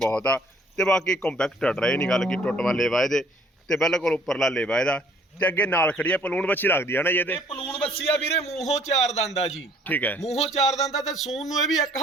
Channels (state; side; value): normal; both; correlation 0.59